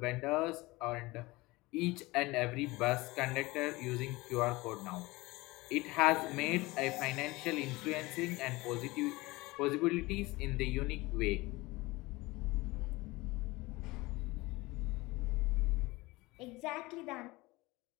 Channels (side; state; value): right; quieter; 21.7 dB